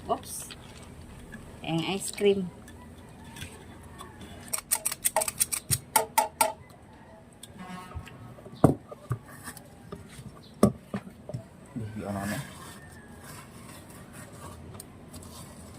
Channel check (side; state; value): both; identical; correlation 1.00